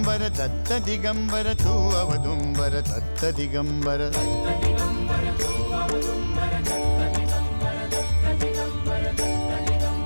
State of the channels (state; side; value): inverted; both; correlation -1.00